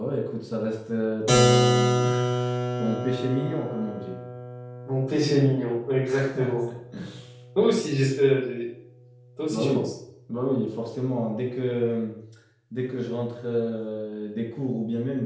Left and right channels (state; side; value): identical; both; correlation 1.00